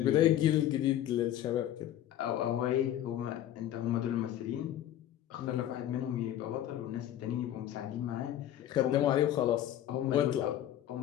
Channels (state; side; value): quieter; right; 11.9 dB